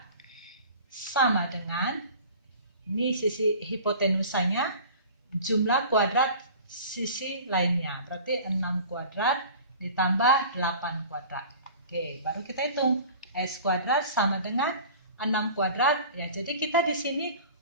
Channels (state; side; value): inverted; both; correlation -0.42